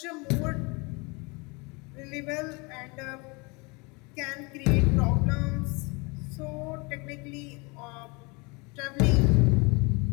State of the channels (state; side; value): quieter; right; 28.4 dB